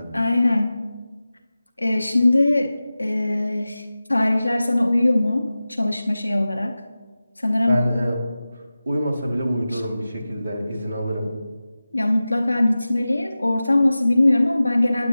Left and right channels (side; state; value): both; inverted; correlation -0.96